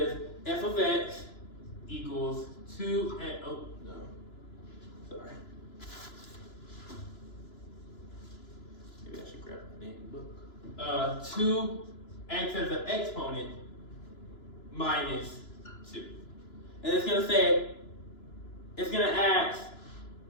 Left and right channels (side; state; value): right; late; 2.9 ms